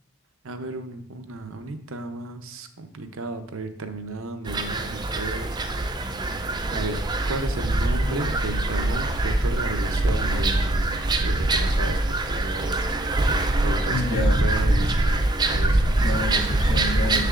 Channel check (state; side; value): normal; both; correlation 0.64